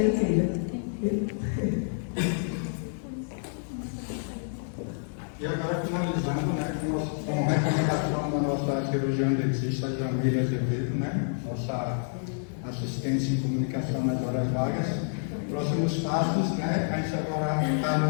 incrível. E agora, finalizando, né, com recomendação da nossa cirurgiã dentista Jamila Azevedo, né, nossa assistência em comunicação nas horas vagas. Próximos passos, né, a gente agora está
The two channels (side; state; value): right; silent; digital silence